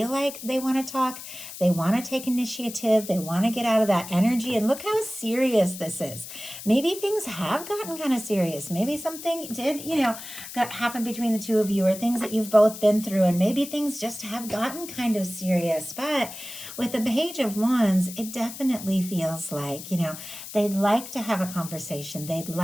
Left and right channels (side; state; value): left; noise; hiss, 12 dB below the sound